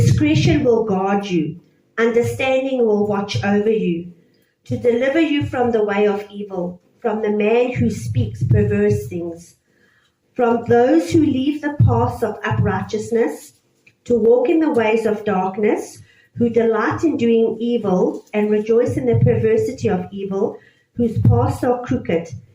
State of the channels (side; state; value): both; identical; correlation 1.00